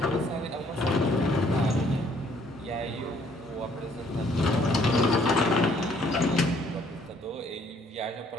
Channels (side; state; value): both; normal; correlation 0.63